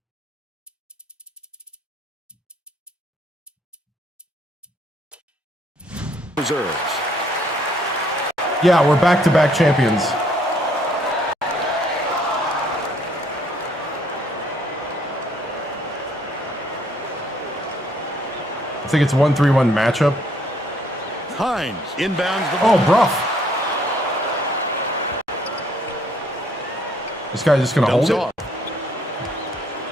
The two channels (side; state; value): both; normal; correlation 0.65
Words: Reserves. Yeah, we're back-to-back champions. I think it's 1-3-1 matchup. Hines inbounds the ball. Oh, Bruff. This guy's just going to hold it.